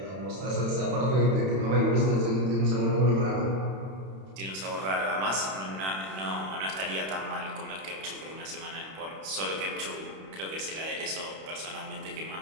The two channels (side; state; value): left; late; 31 ms